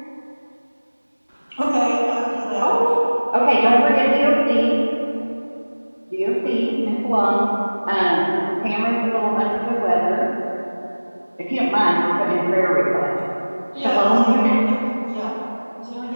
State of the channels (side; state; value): both; inverted; correlation -1.00